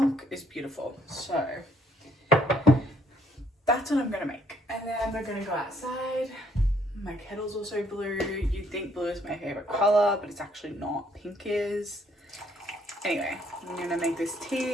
is beautiful. So that's what I'm gonna make. And then we're gonna go outside. My kettle's also blue. You'd think blue is my favorite color, but it's actually not. Pink is. Anyway, I'm gonna make this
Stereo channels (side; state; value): both; normal; correlation 0.67